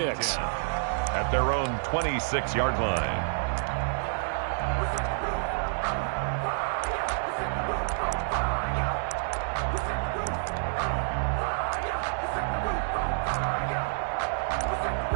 At their own 26-yard line.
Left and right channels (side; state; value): left; silent; digital silence